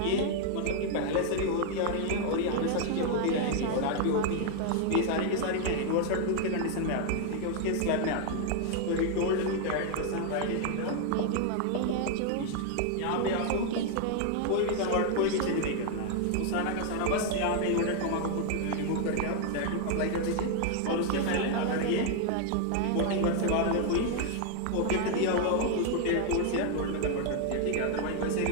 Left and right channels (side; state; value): both; different; correlation 0.00